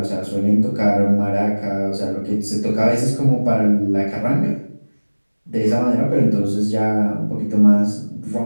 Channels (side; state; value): both; inverted; correlation -1.00